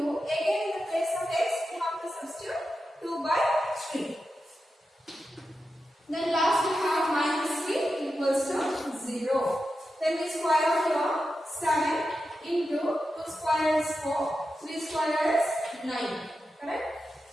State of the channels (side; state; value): both; normal; correlation 0.90